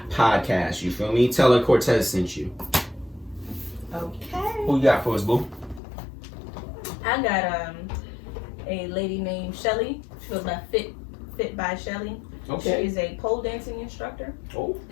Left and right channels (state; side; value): drops out; right; at 5.8 s